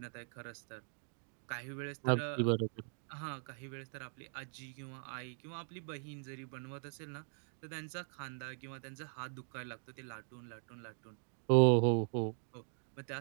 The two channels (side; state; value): left; silent; 51 dB below the other